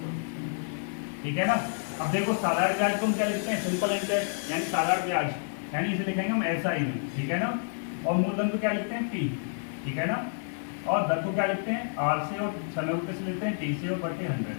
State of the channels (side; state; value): right; silent; 59 dB below the other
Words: ठीक है ना। अब देखो साधारण ब्याज को हम क्या लिखते हैं, सिंपल इंटरेस्ट यानी साधारण ब्याज, यानी इसे लिखेंगे हम ऐसा ही, ठीक है ना। और मूलधन को क्या लिखते हैं P, ठीक है ना। और दर को क्या लिखते हैं R से, और समय को कैसे लिखते हैं T से और बटे 100,